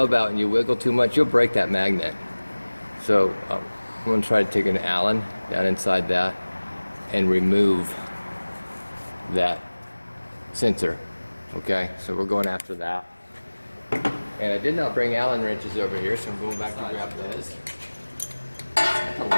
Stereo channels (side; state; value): both; inverted; correlation -1.00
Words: out and you wiggle too much, you'll break that magnet. So I'm going to try to take an Allen down inside that and remove that sensor. Okay, so we're going after that. And I did not bring Allen wrenches over here, so I'm going back to grab those. It's a